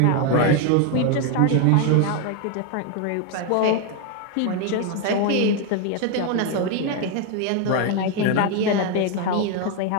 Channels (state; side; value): different; both; correlation 0.01